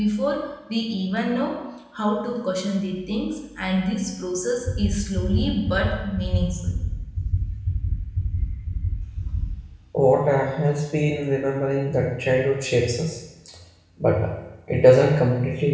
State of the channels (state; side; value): identical; both; correlation 1.00